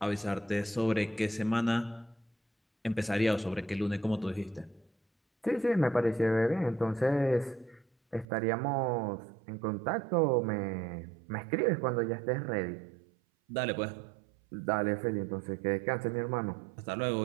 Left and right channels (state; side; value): drops out; left; at 8.2 s